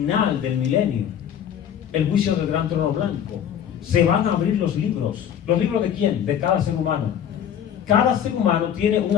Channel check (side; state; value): right; quieter; 9.2 dB